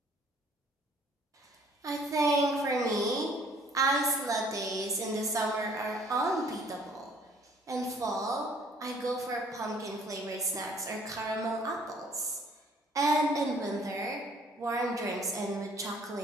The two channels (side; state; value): both; normal; correlation 0.58